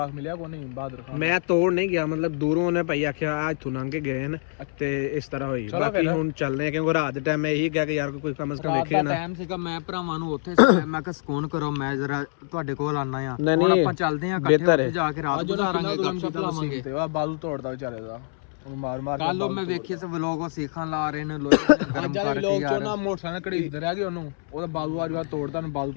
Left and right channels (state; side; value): silent; right; 61 dB below the other